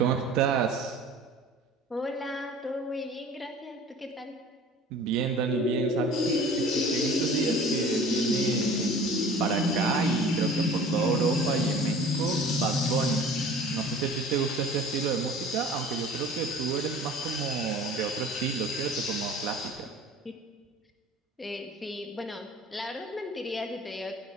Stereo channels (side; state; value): both; normal; correlation 0.44